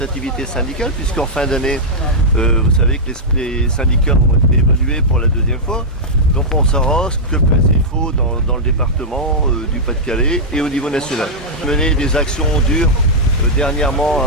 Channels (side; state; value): both; normal; correlation -0.08